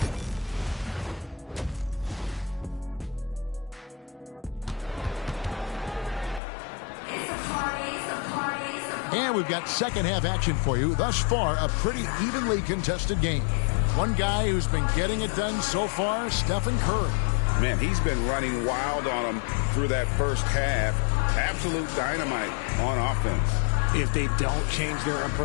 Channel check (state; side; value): drops out; right; at 6.4 s